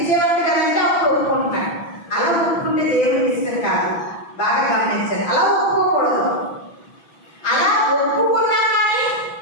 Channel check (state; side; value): late; right; 6.0 ms